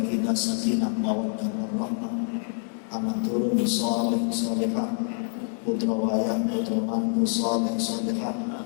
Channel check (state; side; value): silent; right; 61 dB below the other